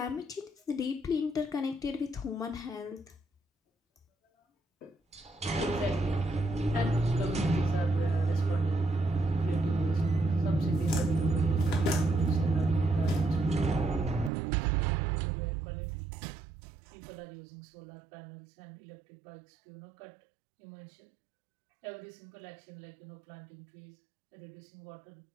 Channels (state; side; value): drops out; left; at 14.3 s